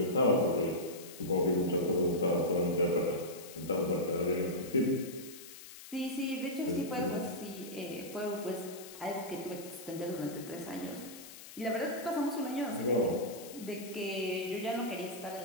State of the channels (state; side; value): noise; left; hiss, 15 dB below the sound